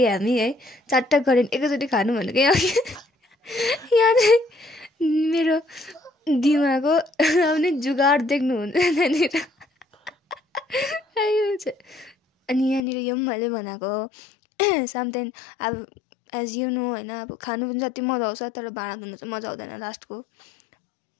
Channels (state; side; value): drops out; right; at 12.8 s